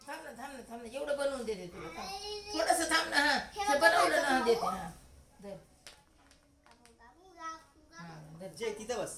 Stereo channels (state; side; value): identical; both; correlation 1.00